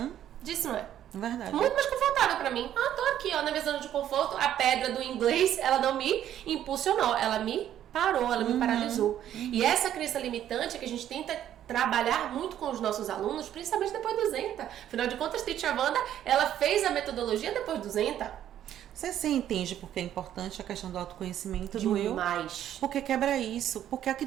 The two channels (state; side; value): quieter; left; 11.1 dB